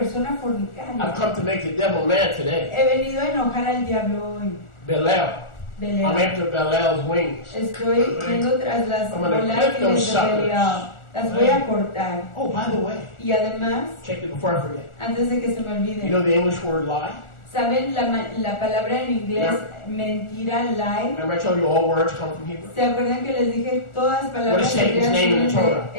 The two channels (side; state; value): right; late; 1.4 ms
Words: I've fornicaria. come to make the devil mad today. He venido a enojar al diablo hoy. Belial. I'm Belial. after Belial's wings. Estoy yendo tras las I'm gonna bolas clip those de Belial. suckers. Las voy a cortar. Oh, by the way, Y además, check it before I forget. antes de que se me You know olvide, the English word lie? ¿Saben la palabra en inglés mentira, lie? Remember I told you all words come from Hebrew? ¿Se acuerdan que les dije todas What palabras is Satan's hebreas name in vienen the Torah?